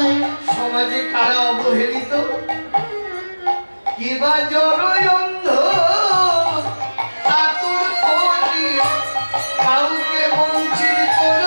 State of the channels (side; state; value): both; inverted; correlation -1.00